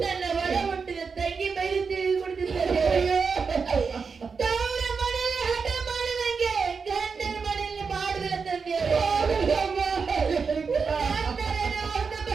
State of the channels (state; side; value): quieter; left; 5.3 dB